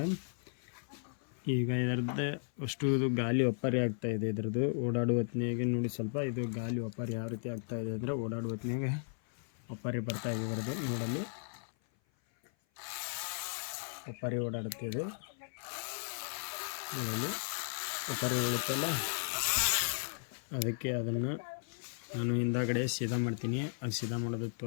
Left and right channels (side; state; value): right; silent; 54 dB below the other